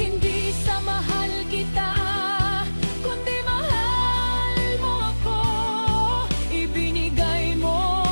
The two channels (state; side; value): inverted; both; correlation -1.00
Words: sa mahal kita, kundi mahal mo ako. Ibinigay mo